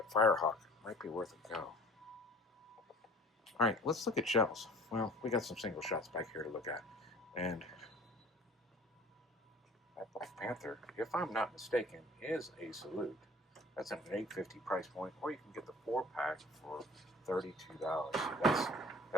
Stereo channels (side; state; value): both; normal; correlation 0.47